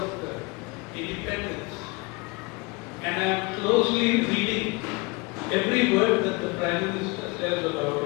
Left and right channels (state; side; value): quieter; right; 26.5 dB